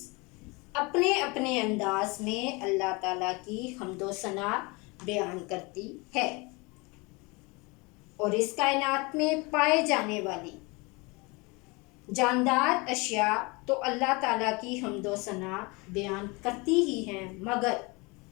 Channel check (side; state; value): right; quieter; 26.8 dB